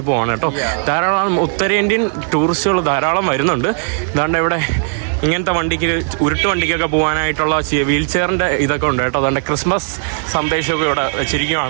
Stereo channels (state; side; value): silent; left; digital silence